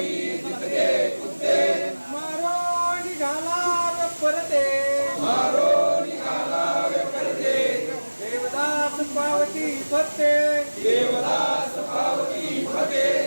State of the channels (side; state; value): both; inverted; correlation -1.00